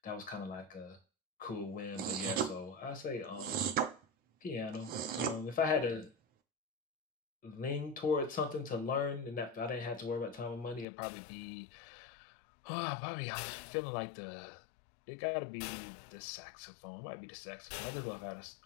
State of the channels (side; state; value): right; drops out; at 10.9 s